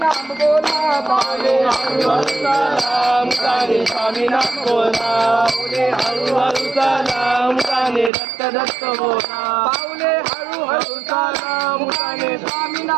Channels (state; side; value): drops out; left; at 8.1 s